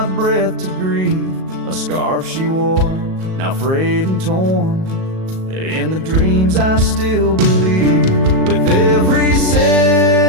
breath to grieve. A scarf she wore, now frayed and torn, in the dreams I still believe. With every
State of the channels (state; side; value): late; left; 37 ms